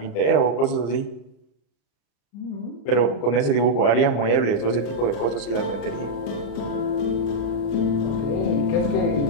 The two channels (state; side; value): late; right; 34 ms